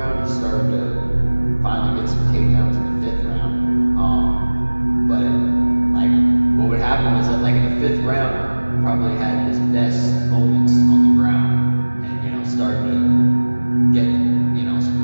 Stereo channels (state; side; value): inverted; both; correlation -1.00